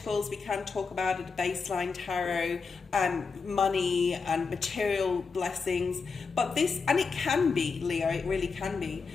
we can talk about at a baseline tarot, money and material blessings, but this, and it can be, Leo, it really can be,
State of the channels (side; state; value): right; quieter; 4.9 dB